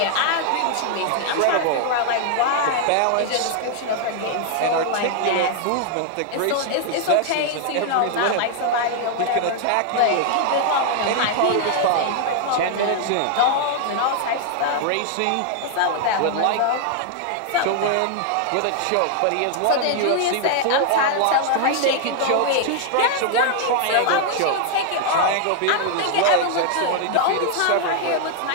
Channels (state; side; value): different; both; correlation 0.00